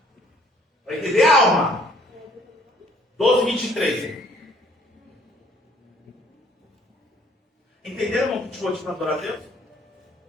Para entender a alma. 12:23. Entenderam, irmão, que te vou te adorar a Deus?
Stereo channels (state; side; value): normal; both; correlation 0.60